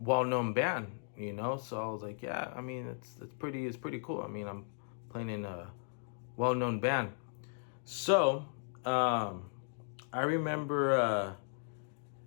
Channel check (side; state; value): right; silent; digital silence